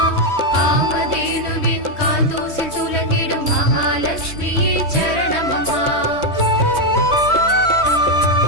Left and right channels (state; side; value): late; right; 3.2 ms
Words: காமதேனுவின் கால் தூசில் துலங்கிடும் மகாலட்சுமியே சரணமம்மா.